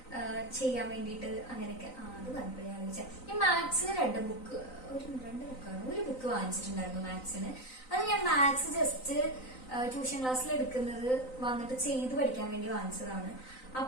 ചെയ്യാൻ വേണ്ടിയിട്ട് അങ്ങനെയൊക്കെ. അത് പറഞ്ഞപ്പോൾ ഞാൻ വിളിച്ചാൽ ഞാൻ മാത്സിന് രണ്ട് ബുക്കാണ്, ഒരു ബുക്ക് വാങ്ങിച്ചിട്ടുണ്ടായിരുന്നു മാത്സിന്. അത് ഞാൻ മാത്സ് ജസ്റ്റ് ട്യൂഷൻ ക്ലാസ്സിൽ എടുക്കുന്നത് വന്നിട്ട് ചെയ്ത് പഠിക്കാൻ വേണ്ടി വാങ്ങിച്ചതാണ്.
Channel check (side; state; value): right; late; 3.9 ms